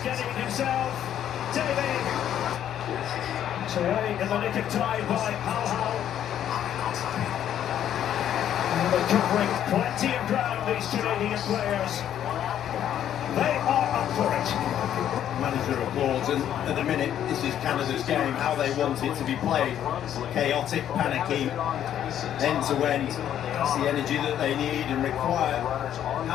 himself. David. So early in the nick of time by Hal. And they're covering plenty of ground, these Canadian players. They are up for it. Manager applauds, and at the minute, this is Canada's game, how they want it to be played. Chaotic, panicky, end-to-end. That's the energy that they need and require.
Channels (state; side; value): quieter; right; 10.5 dB